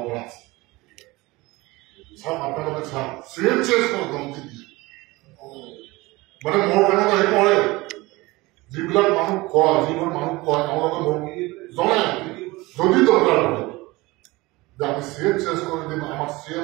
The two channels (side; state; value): left; quieter; 21.7 dB